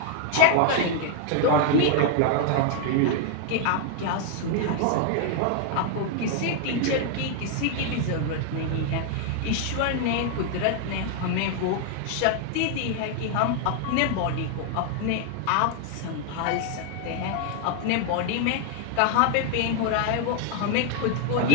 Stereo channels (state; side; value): different; both; correlation 0.00